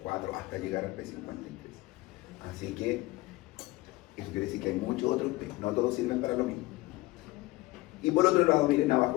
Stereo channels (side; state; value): right; quieter; 19.9 dB